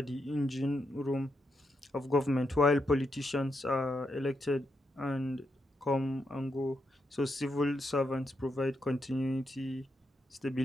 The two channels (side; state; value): both; normal; correlation 0.83